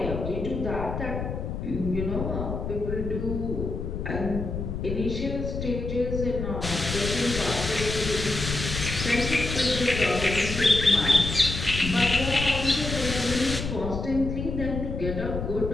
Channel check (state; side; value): noise; left; rumble, 5 dB below the sound